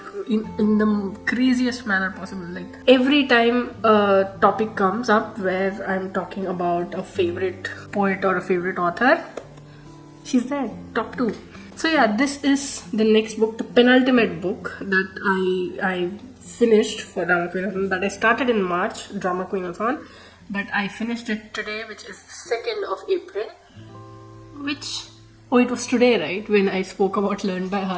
in the craziest manner possible. Like every time a topic comes up where I'm talking about a favorite poet or a favorite author, she's there, top 2. So yeah, this is the next book, the penultimate book that I finished for DramaQueenAthon, that I started in March, DramaQueenAthon, but I finished it today, which is 2nd of April, which, oh, it was today, right, when I spoke about Learn by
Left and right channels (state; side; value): identical; both; correlation 1.00